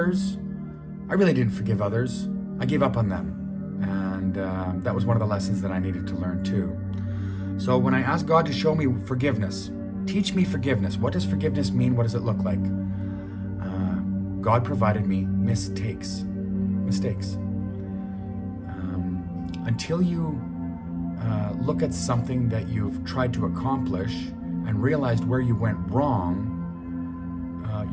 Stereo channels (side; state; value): both; identical; correlation 1.00